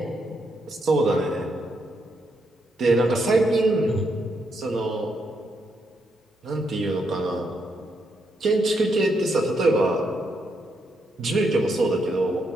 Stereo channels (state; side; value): normal; both; correlation 0.78